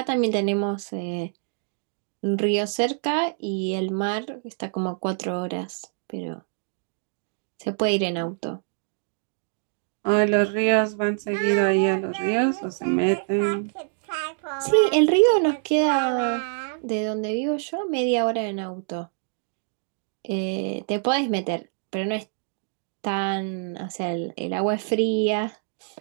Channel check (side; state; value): left; silent; digital silence